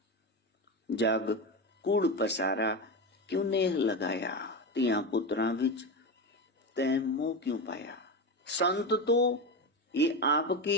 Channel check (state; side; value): normal; both; correlation 0.18